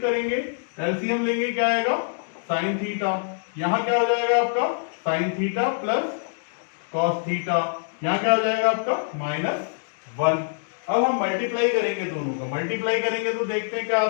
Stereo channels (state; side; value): silent; right; digital silence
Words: एलसीएम लेंगे, क्या आएगा, साइन थीटा, यहां क्या हो जाएगा आपका, sine theta plus cos theta, यहां क्या हो जाएगा आपका माइनस 1। अब हम मल्टीप्लाई करेंगे दोनों का, मल्टीप्लाई करेंगे तो देखते हैं क्या